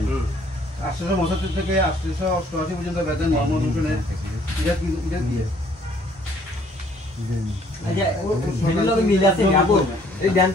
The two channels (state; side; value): normal; both; correlation 0.61